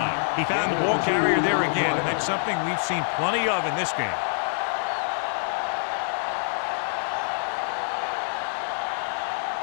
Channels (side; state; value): right; silent; digital silence